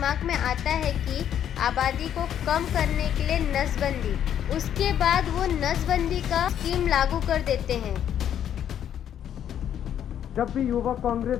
में आता है कि आबादी को कम करने के लिए नसबंदी। उसके बाद वो नसबंदी का स्कीम लागू कर देते हैं। जब भी युवा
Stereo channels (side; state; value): right; quieter; 9.8 dB